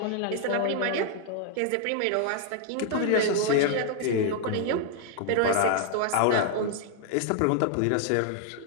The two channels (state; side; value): different; both; correlation 0.00